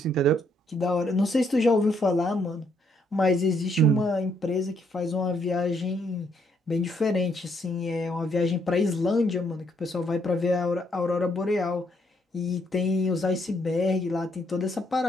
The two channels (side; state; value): both; normal; correlation 0.72